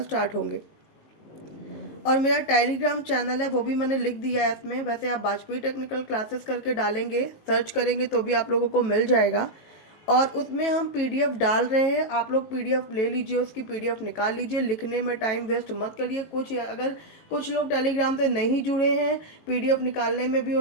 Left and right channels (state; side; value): late; right; 18 ms